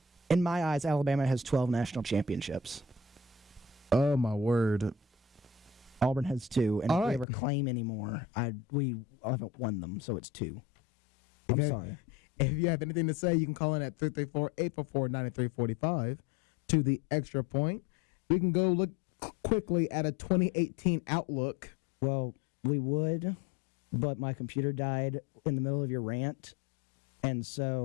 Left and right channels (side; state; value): right; drops out; at 7.2 s